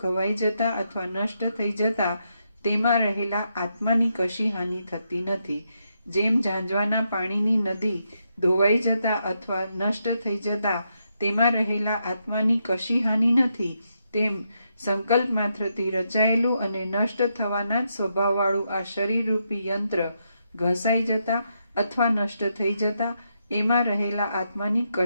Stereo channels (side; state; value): both; inverted; correlation -0.81